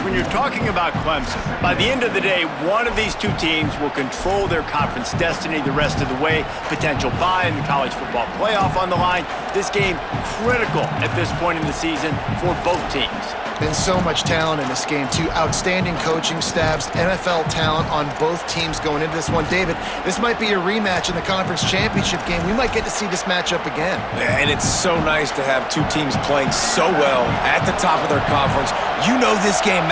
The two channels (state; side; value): identical; both; correlation 1.00